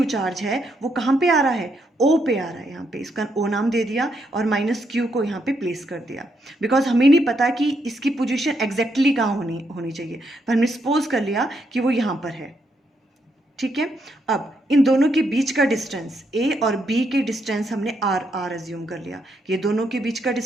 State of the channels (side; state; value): both; normal; correlation 0.77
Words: चार्ज है वो कहाँ पे आ रहा है, ओ पे आ रहा है। यहाँ पे इसका ओ नाम दे दिया और माइनस क्यू को यहाँ पे प्लेस कर दिया, बिकॉज हमें नहीं पता कि इसकी पोजीशन एग्जैक्टली कहाँ होनी चाहिए, पर हमने सपोज कर लिया कि वो यहाँ पर है। ठीक है। अब इन दोनों के बीच का डिस्टेंस, ए और बी के डिस्टेंस हमने आर अज्यूम कर लिया। ये दोनों के बीच का